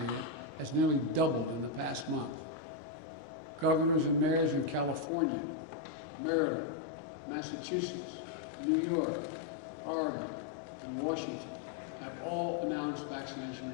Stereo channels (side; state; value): right; drops out; at 5.1 s